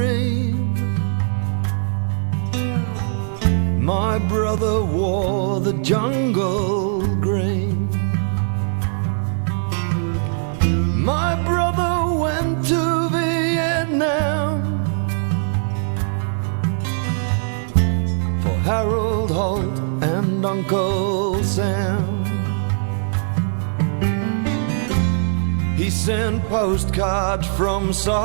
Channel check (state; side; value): silent; left; digital silence